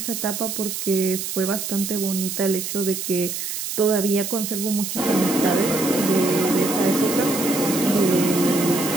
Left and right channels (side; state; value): right; noise; hiss, 5 dB below the sound